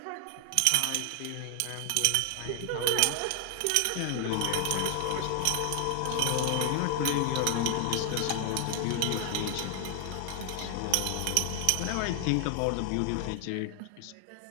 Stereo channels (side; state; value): both; different; correlation 0.00